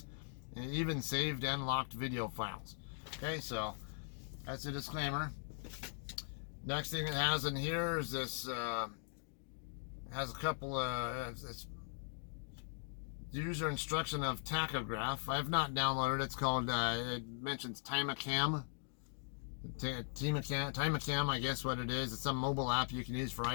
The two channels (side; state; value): right; silent; digital silence